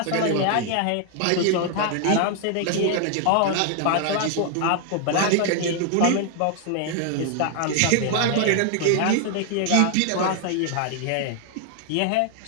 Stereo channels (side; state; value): both; different; correlation 0.00